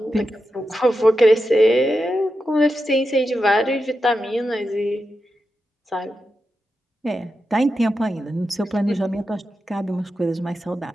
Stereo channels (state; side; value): normal; both; correlation 0.89